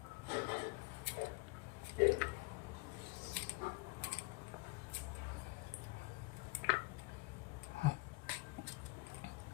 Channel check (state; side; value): quieter; right; 23.7 dB